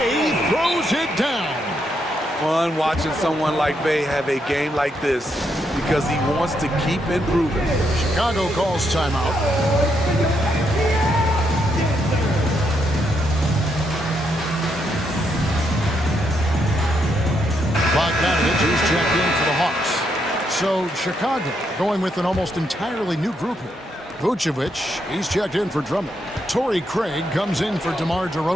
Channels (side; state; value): both; normal; correlation 0.78